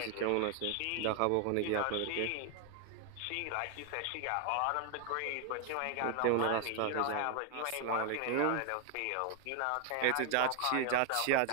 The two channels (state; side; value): different; both; correlation 0.01